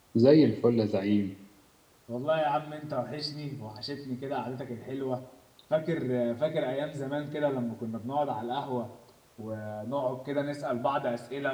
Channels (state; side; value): identical; both; correlation 1.00